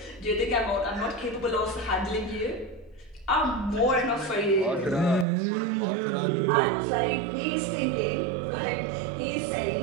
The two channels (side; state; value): left; drops out; at 5.2 s